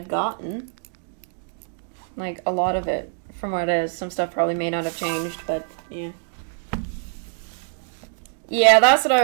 gotten. Like, a lot of it from what it is. Some stuff probably may not have changed, but yeah. Yeah, that's what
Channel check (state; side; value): silent; left; digital silence